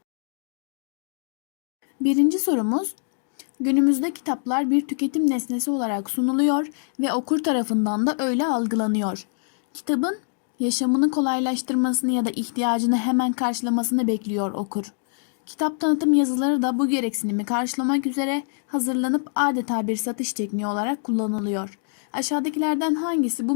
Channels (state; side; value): silent; right; digital silence